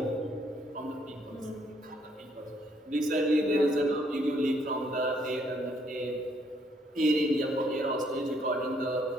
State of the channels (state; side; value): normal; both; correlation 0.69